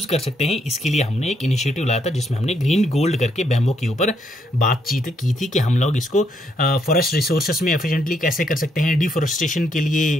कर सकते हैं, इसके लिए हमने एक इनिशिएटिव लाया था, जिसमें हमने ग्रीन गोल्ड करके बैम्बो के ऊपर बातचीत की थी कि हम लोग इसको फॉरेस्ट रिसोर्सेस में एफिशिएंटली कैसे कर सकते हैं, डिफोरेस्टेशन के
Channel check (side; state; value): both; normal; correlation 0.74